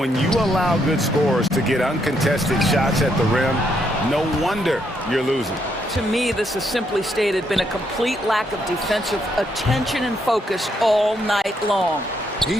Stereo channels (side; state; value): both; normal; correlation 0.75